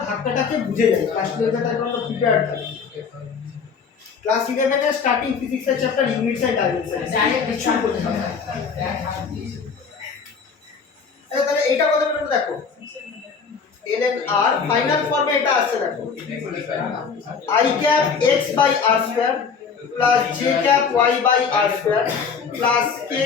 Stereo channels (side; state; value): right; quieter; 5.8 dB